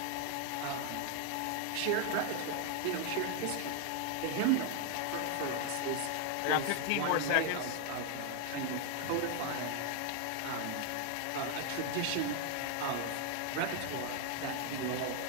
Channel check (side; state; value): both; different; correlation 0.00